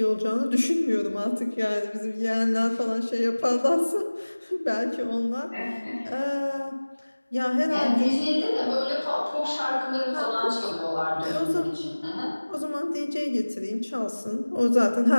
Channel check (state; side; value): inverted; both; correlation -1.00